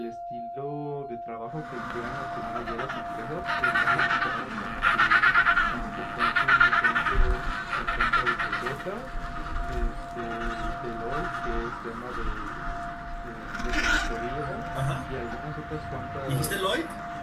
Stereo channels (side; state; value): both; identical; correlation 1.00